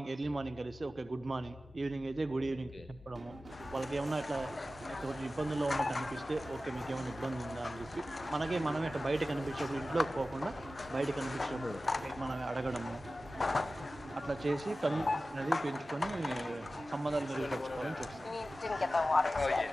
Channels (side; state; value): both; normal; correlation 0.95